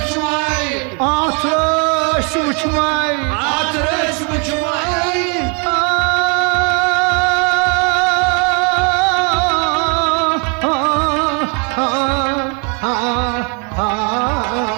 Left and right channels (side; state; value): left; quieter; 34.9 dB